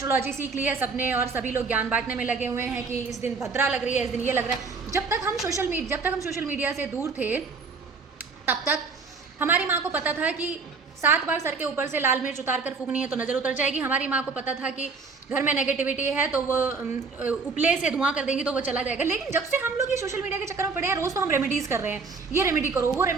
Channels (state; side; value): quieter; left; 4.6 dB